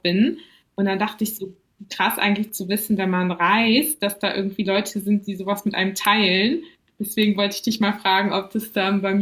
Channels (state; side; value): identical; both; correlation 1.00